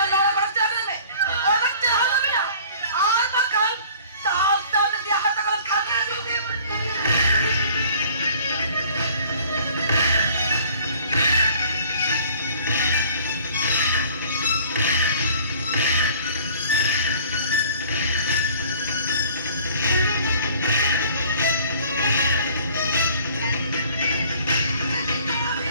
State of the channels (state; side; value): inverted; both; correlation -0.51